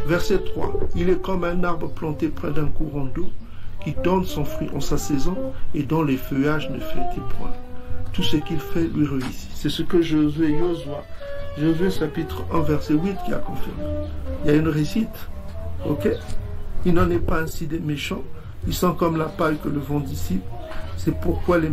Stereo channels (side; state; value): both; identical; correlation 1.00